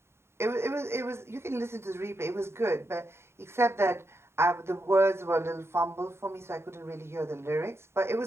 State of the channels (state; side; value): late; left; 0.12 ms